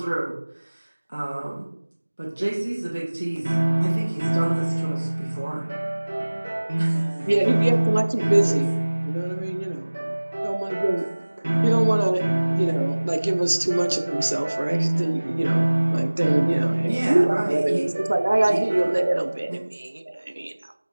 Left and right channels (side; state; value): both; inverted; correlation -1.00